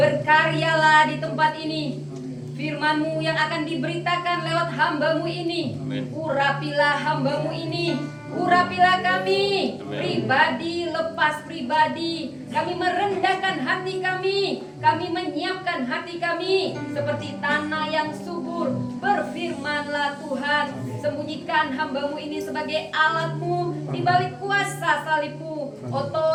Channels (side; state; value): both; identical; correlation 1.00